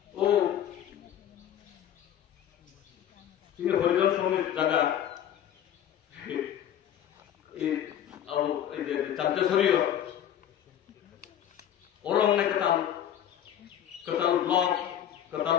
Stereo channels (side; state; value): right; quieter; 10.4 dB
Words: ও তিনি হরিজন সমিতির জায়গা চাঞ্চেশ্বরীয় ওরং নাই কতাল কতাল ব্লক কতাল